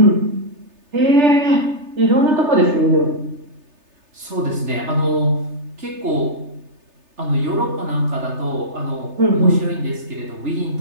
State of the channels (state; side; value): late; left; 3.3 ms